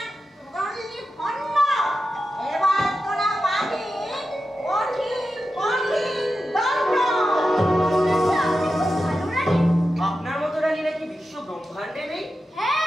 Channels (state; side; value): normal; both; correlation 0.90